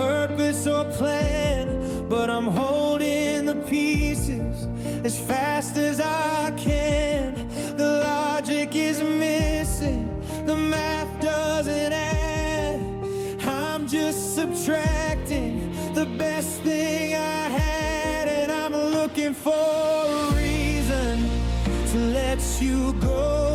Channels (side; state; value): both; identical; correlation 1.00